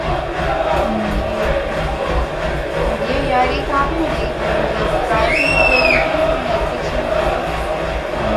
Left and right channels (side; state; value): both; identical; correlation 1.00